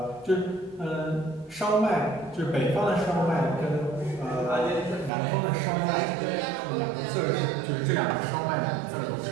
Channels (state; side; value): drops out; left; at 5.1 s